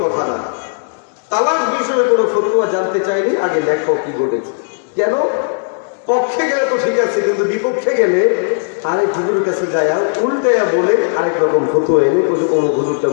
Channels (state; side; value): silent; right; digital silence